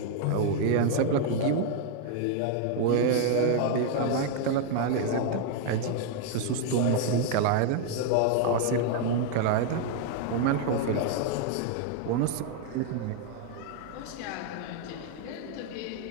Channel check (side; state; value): both; different; correlation 0.00